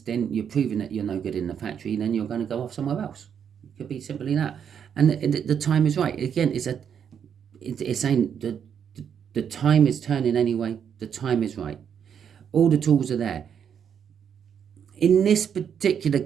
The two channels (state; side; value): quieter; left; 8.0 dB